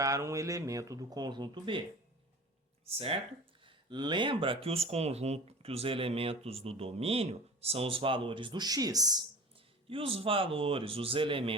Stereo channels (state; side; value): normal; both; correlation 0.38